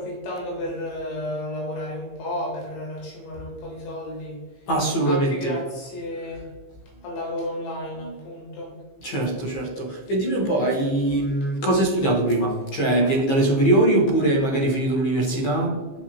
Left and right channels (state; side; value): late; right; 15 ms